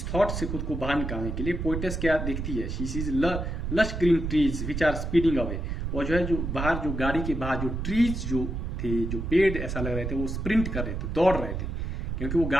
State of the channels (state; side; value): noise; right; rumble, 3 dB below the sound